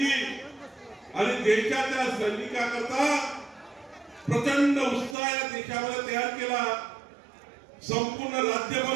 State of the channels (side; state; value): left; drops out; at 5.2 s